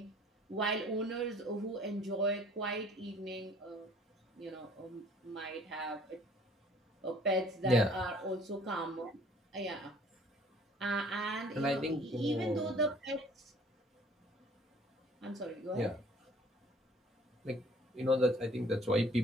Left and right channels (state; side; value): normal; both; correlation 0.55